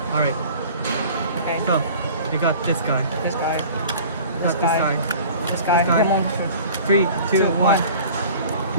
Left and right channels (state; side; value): inverted; both; correlation -0.44